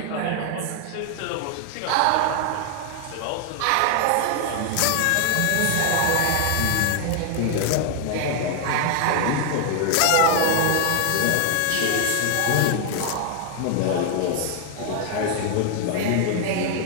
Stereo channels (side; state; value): both; different; correlation 0.00